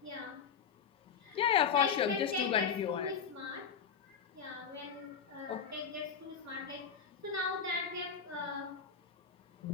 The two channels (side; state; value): right; quieter; 6.9 dB